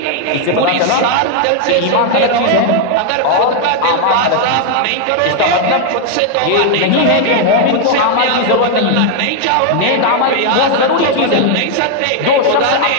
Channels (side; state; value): both; different; correlation 0.00